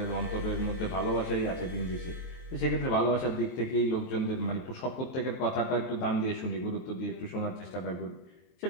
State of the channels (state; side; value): late; right; 23 ms